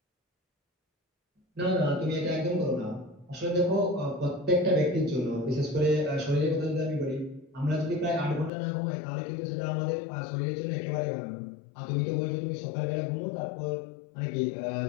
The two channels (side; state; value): right; drops out; at 8.5 s